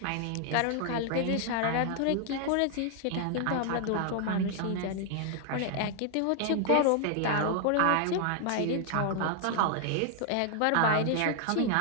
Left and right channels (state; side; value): different; both; correlation 0.00